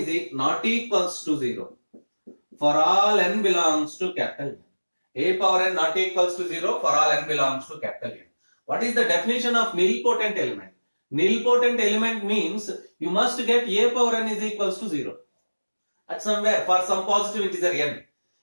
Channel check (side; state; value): both; inverted; correlation -1.00